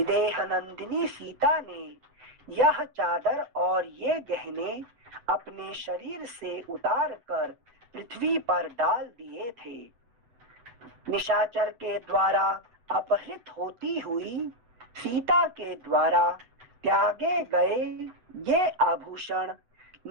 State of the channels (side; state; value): left; late; 8.0 ms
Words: नंदिनी सीता ने यह चादर और ये गहने अपने शरीर से उतार कर पृथ्वी पर डाल दिए थे। निशाचर के द्वारा अपहृत होती हुई सीता के द्वारा त्यागे गए ये आभूषण